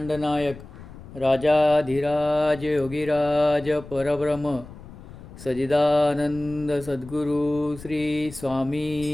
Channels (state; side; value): noise; left; rumble, 16 dB below the sound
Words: नायक राजाधिराज योगीराज परब्रह्म सजिदानंद सद्गुरु श्री